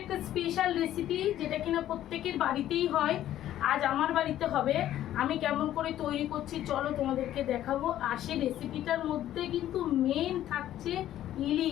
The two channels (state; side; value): quieter; right; 12.5 dB